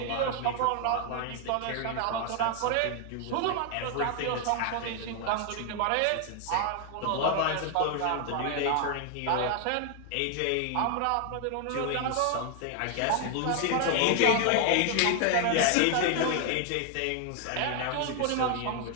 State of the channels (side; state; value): both; different; correlation 0.00